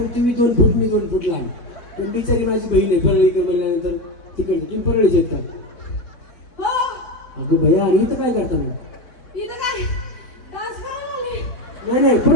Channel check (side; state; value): right; late; 4.0 ms